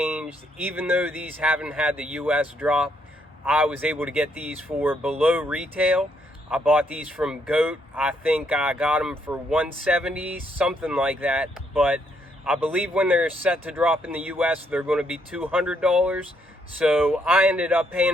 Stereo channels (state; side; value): normal; both; correlation 0.73